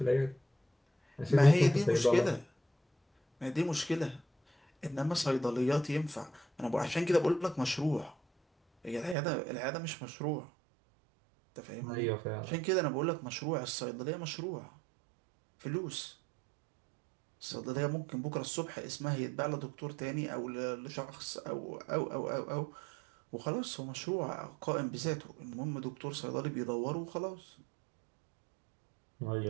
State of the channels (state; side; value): drops out; left; at 9.2 s